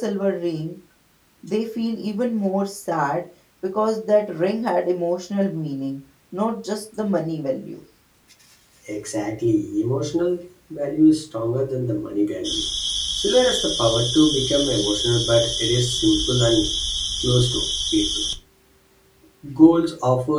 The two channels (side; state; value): both; identical; correlation 1.00